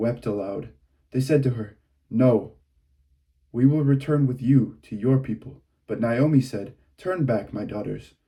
aloud. They said to her, "No, we will return with you to your people." But Naomi said, "Turn back, my daughters.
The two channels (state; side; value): identical; both; correlation 1.00